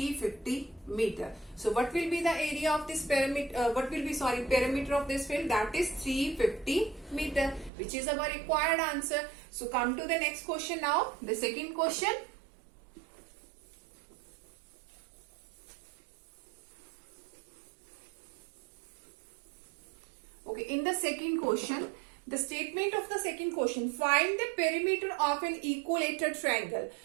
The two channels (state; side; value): drops out; left; at 7.7 s